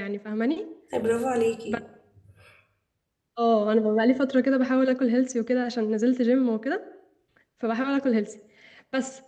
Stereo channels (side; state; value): both; identical; correlation 1.00